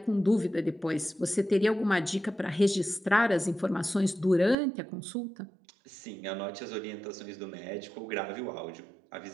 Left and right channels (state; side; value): drops out; left; at 4.5 s